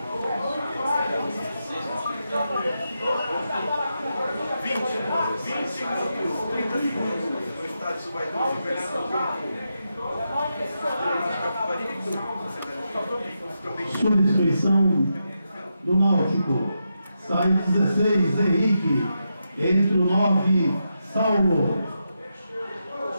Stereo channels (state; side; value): inverted; both; correlation -0.86